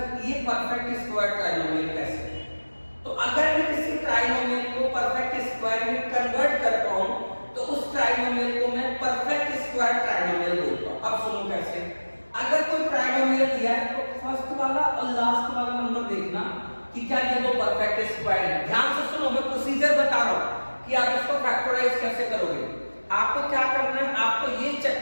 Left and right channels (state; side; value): inverted; both; correlation -1.00